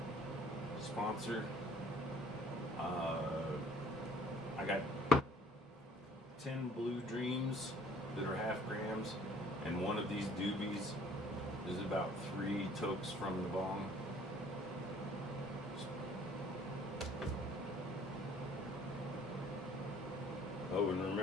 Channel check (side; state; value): both; normal; correlation 0.56